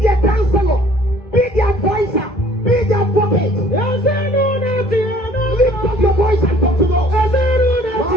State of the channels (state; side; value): normal; both; correlation 0.55